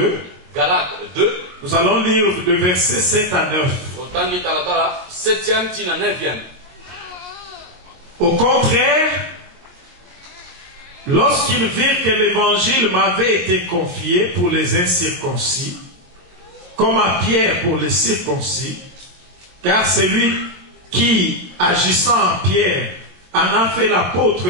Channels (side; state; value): left; late; 22 ms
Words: Nous allons lire de versets 7 à 9. Au contraire, lorsqu'ils virent que l'évangile m'avait été confié pour les incirconcis, comme à Pierre pour les circoncis, car c'est lui qui, agissant en Pierre, en a fait l'apôtre